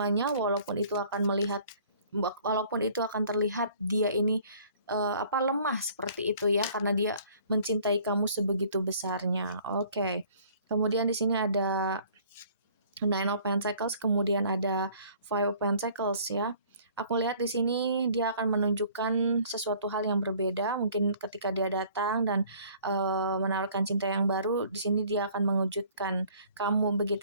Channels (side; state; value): both; inverted; correlation -0.55